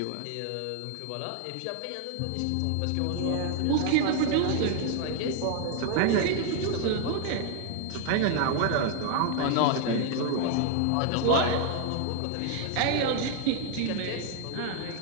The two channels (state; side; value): different; both; correlation 0.00